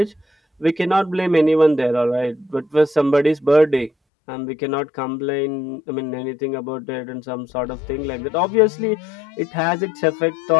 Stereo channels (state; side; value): drops out; right; at 3.9 s